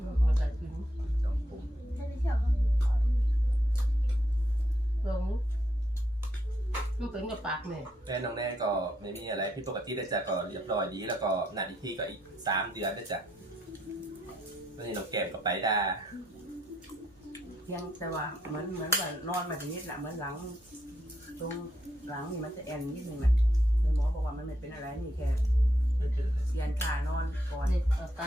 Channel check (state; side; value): normal; both; correlation 0.77